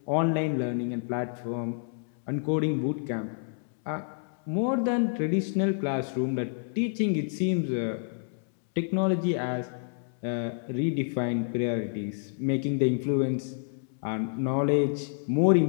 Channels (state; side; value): silent; right; 59 dB below the other